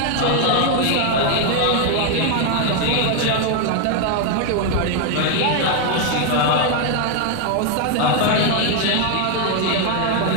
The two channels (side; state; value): both; different; correlation 0.01